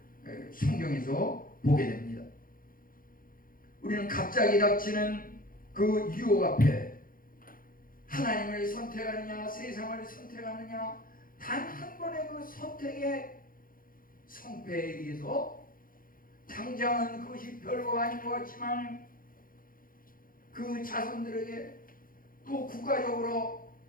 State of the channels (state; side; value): late; right; 0.41 ms